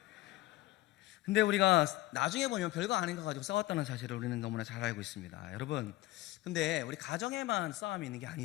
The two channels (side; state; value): right; quieter; 17.3 dB